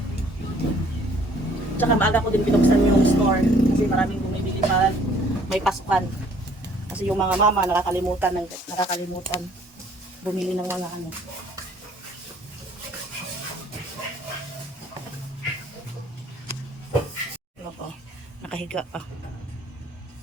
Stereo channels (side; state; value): both; normal; correlation 0.59